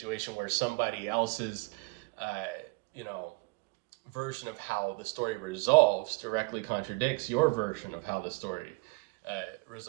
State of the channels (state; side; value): quieter; left; 28.3 dB